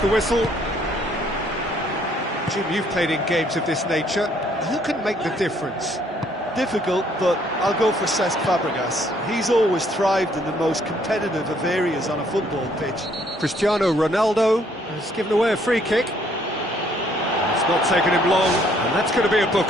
whistle. Jim, you've played in games of this nature. Who can make the difference? Difficult, but I'll go for Cesc Fabregas. He's always thrived in the most competitive of areas on a football pitch. Cristiano Ronaldo has given away a free kick. It's not taken him long, and that's going to be a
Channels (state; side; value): normal; both; correlation 0.65